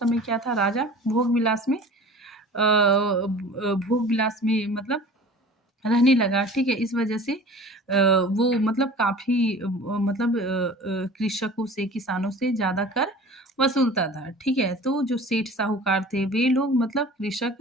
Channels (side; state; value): both; normal; correlation 0.42